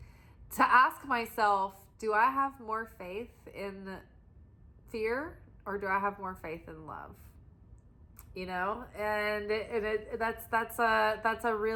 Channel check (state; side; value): identical; both; correlation 1.00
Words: to ask myself, do I have more faith in fear or do I have more faith in love? You know, and that's a